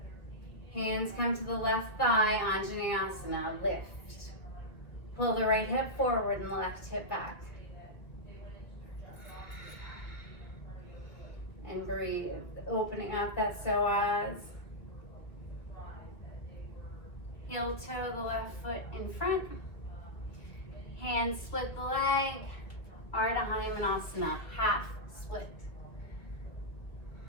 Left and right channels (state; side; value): late; right; 2.0 ms